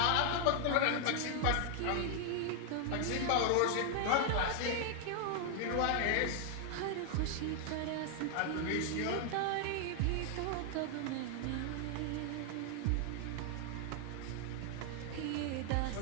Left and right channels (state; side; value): different; both; correlation 0.00